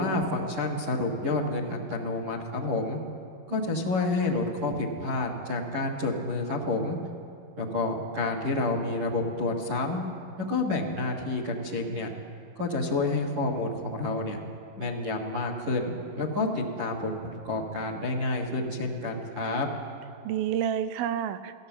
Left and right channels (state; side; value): late; left; 11 ms